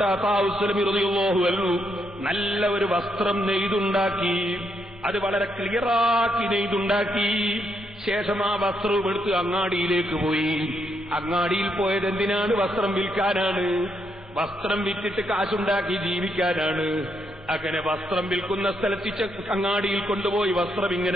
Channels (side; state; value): both; normal; correlation 0.78